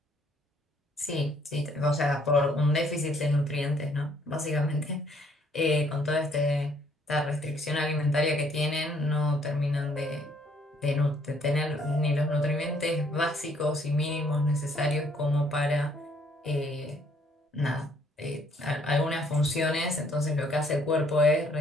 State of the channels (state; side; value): normal; both; correlation 0.65